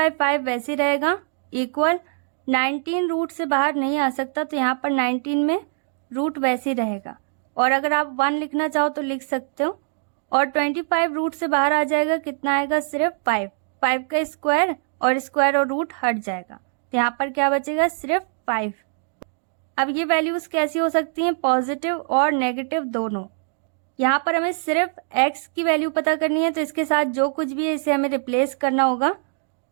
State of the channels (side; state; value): left; silent; digital silence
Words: वैसे ही रहेगा इक्वल, 19 रूट से बाहर नहीं आ सकता तो यहाँ पर 19 में रूट वैसे ही रहेगा, और अगर आप 1 लिखना चाहो तो लिख सकते हो, और 25 रूट से बाहर आ जाएगा, कितना आएगा सिर्फ 5, 5 का स्क्वायर और रूट हट जाएगा, तो यहाँ पर क्या बचेगा सिर्फ 5। अब ये वैल्यूज कैसी हो सकती हैं पॉजिटिव और नेगेटिव दोनों। यहाँ पर हमें सिर्फ x की वैल्यू पता करनी है तो इसके साथ जो कुछ भी है इसे हमें रिप्लेस करना होगा।